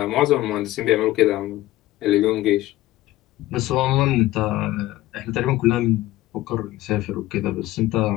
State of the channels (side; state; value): right; quieter; 16.4 dB